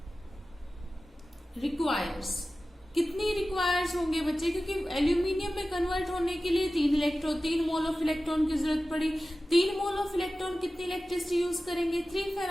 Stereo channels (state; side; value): normal; both; correlation 0.95